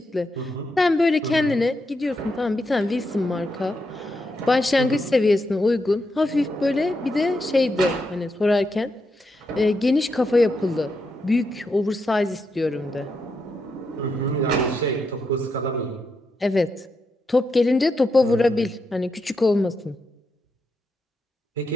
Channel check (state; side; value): normal; both; correlation 0.83